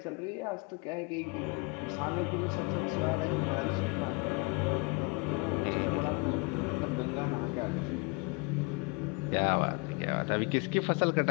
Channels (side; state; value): right; quieter; 29.0 dB